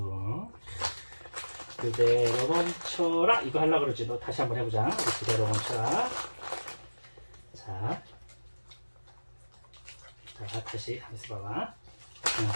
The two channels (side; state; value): both; inverted; correlation -1.00